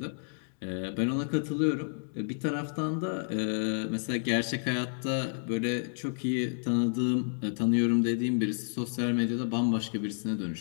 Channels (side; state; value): right; silent; digital silence